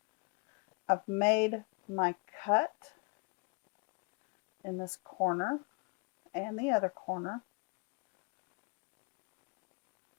I've made my cut in this corner and the other corner.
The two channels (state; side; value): quieter; right; 31.6 dB